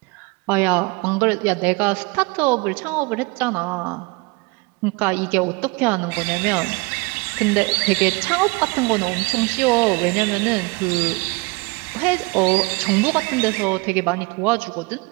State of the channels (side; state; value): left; quieter; 26.9 dB